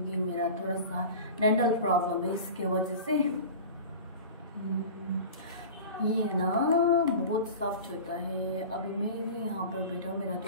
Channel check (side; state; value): both; inverted; correlation -0.35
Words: मेरा थोड़ा सा डेंटल प्रॉब्लम है। इसके वजह से ये ना बहुत सॉफ्ट होता है। अभी मैं भी यहाँ पर बैठा हूँ, मेरा